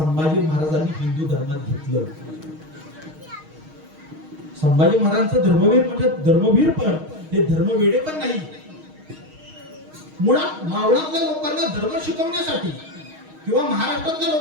महाराजांनी हिंदू धर्मात घेतलं. संभाजी महाराजांचं धर्मवीर म्हणजे धर्मवीर, पण हे धर्मवेडे पण नाही. मुळात मावळातल्या लोकांना धर्म शिकवण्यासाठी किंवा महाराष्ट्रातल्या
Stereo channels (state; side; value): late; left; 6.4 ms